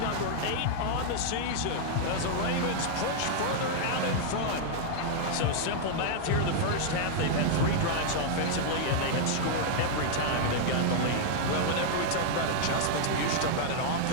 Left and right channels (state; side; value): different; both; correlation -0.01